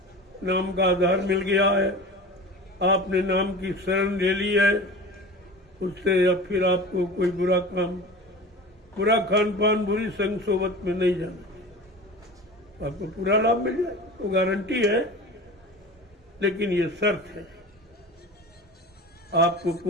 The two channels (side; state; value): both; normal; correlation 0.35